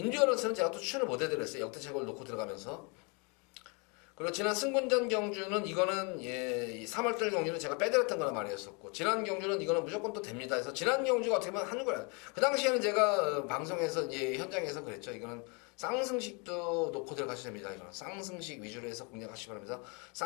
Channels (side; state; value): right; quieter; 32.5 dB